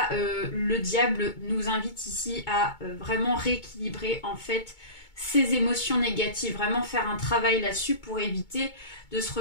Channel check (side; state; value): right; late; 2.2 ms